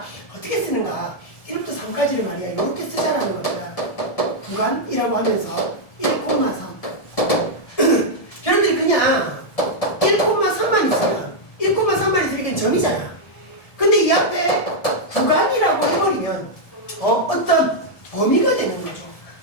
어떻게 쓰는가? 1부터 3까지를 말이야, 이렇게 쓰자라는 겁니다. 구간이라고 하면서 1,3. 여러분들이 그냥 1,3만 있으면, 1,3만 있으니까 점이잖아. 근데 이 앞에 구간이라고 해버리면, 어떤 범위가 되는 거죠.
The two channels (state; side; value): late; right; 1.7 ms